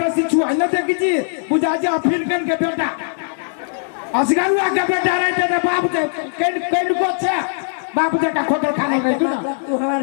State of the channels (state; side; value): silent; right; digital silence